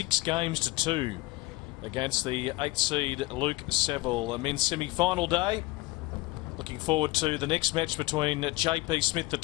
games to 2 against the 8th seed Luke Saville. A men's semi-final day. Looking forward to the next match between JP Smith, the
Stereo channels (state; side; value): quieter; right; 21.2 dB